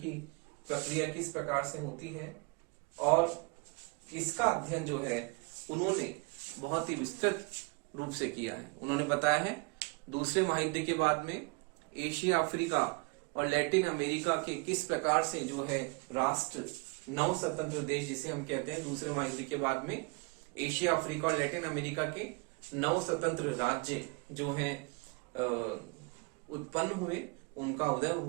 प्रक्रिया किस प्रकार से होती है, और इसका अध्ययन जो है उन्होंने बहुत ही विस्तृत रूप से किया है। उन्होंने बताया है दूसरे महायुद्ध के बाद में एशिया, अफ्रीका और लैटिन अमेरिका के किस प्रकार से जो है राष्ट्र, नव स्वतंत्र देश जिसे हम कहते हैं, दूसरे महायुद्ध के बाद में एशिया, अफ्रीका और लैटिन अमेरिका के नव स्वतंत्र राज्य जो है उत्पन्न हुए, उनका उदय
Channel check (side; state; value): left; quieter; 30.2 dB